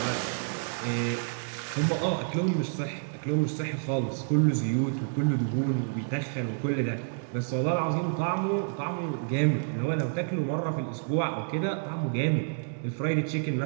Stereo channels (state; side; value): silent; left; digital silence